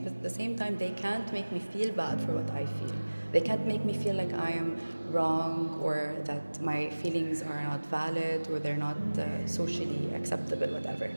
at the same time, they can't make me feel bad for what I feel. They can't make me feel like I am wrong, or that my feelings are not valid, or they're not socially acceptable, whatever,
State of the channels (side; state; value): both; inverted; correlation -1.00